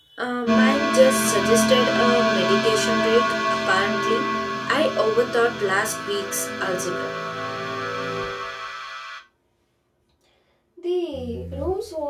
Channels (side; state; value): both; identical; correlation 1.00